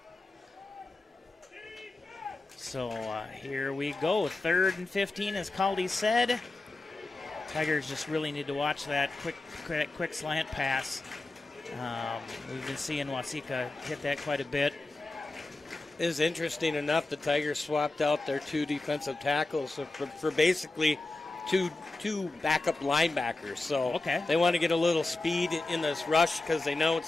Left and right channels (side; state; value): right; quieter; 3.1 dB